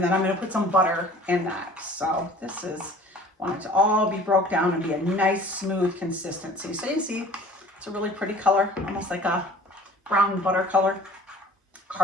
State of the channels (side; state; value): both; normal; correlation 0.47